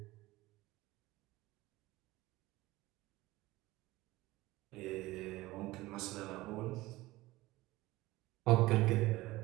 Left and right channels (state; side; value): quieter; left; 18.9 dB